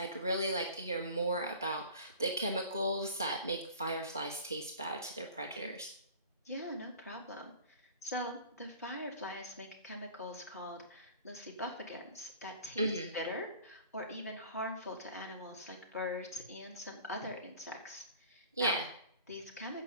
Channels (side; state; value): both; inverted; correlation -0.44